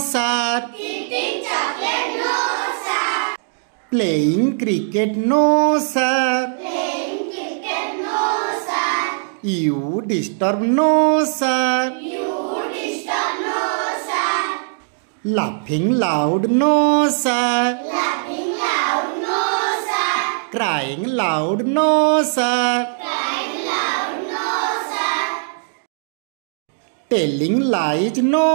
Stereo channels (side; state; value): left; silent; digital silence